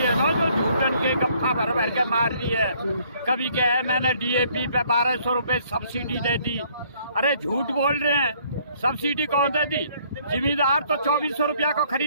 है ना, जो झूठन के गप्फा भर भर के मार रही है। कभी क्या है, मैंने डीएपी पे 1200 रुपये सब्सिडी दे दी। अरे झूठ बोल रहे हैं, सब्सिडी कौन दे दी? जिम्मेदार तो 2400 रुपया को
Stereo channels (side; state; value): both; inverted; correlation -0.63